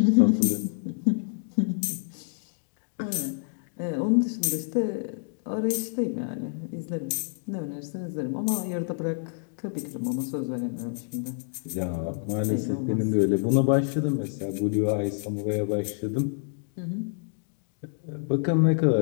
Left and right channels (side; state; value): right; silent; digital silence